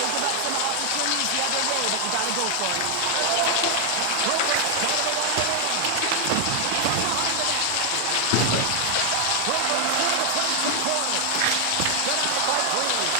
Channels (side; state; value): both; different; correlation 0.00